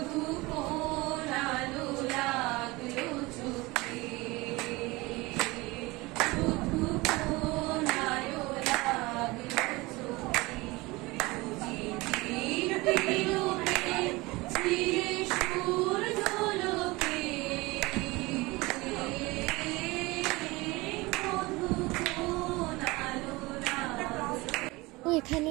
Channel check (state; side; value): quieter; left; 22.4 dB